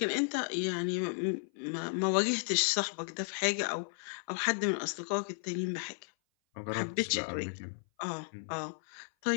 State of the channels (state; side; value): silent; right; 55 dB below the other